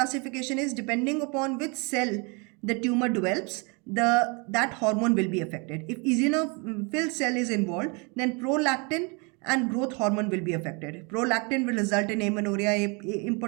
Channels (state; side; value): quieter; left; 31.5 dB